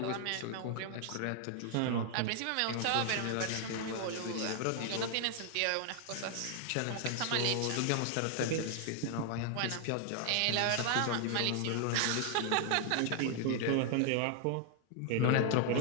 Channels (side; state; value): both; different; correlation 0.00